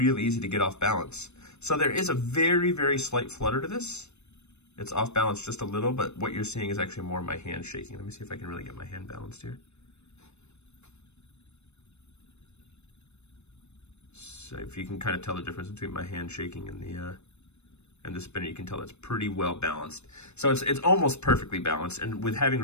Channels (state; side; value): late; right; 0.81 ms